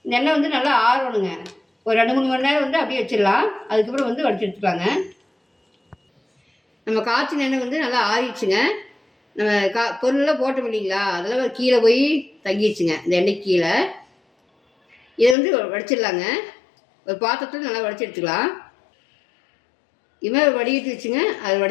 இந்த எண்ணெய் வந்து நல்லா ஆறணுங்க. ஒரு 2-3 மணி நேரம் வந்து அப்படியே வச்சிடலாம். அதுக்கப்புறம் வந்து வடிச்சு எடுத்துக்கலாங்க. நம்ம காய்ச்சின எண்ணெய் வந்து நல்லா ஆறிடுச்சுங்க. நம்ம பொருளெல்லாம் போட்டோம் இல்லைங்களா, அதெல்லாம் கீழே போய் தங்கிடுச்சுங்க இந்த எண்ணெய் கீழே. இதை வந்து வடிச்சிடலாங்க. ஒரு பாத்திரத்தில் நல்லா வடிச்சு எடுத்துக்கலாம். இதுமாதிரி வடிகட்டி வச்சுங்க, அதை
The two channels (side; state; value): right; drops out; at 15.4 s